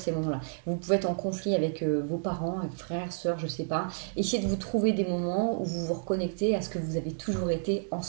moments-là. Vous pouvez être en conflit avec vos parents, avec frères, sœurs, je sais pas. Essayez de vous trouver des moments où vous vous reconnectez à ce que vous avez toujours été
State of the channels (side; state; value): left; silent; digital silence